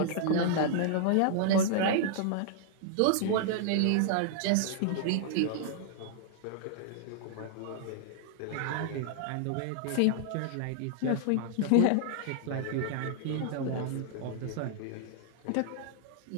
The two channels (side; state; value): both; different; correlation -0.01